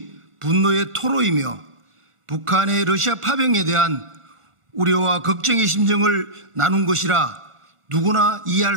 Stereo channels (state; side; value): late; left; 1.4 ms